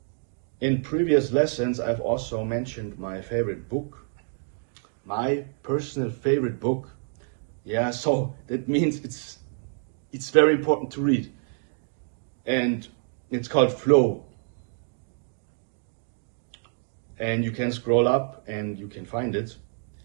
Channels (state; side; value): silent; left; 56 dB below the other